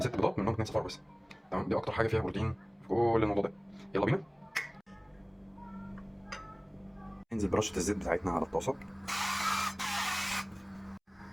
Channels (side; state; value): both; identical; correlation 1.00